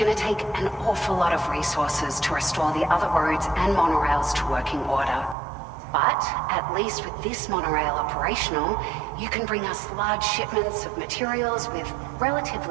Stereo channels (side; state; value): left; drops out; at 5.4 s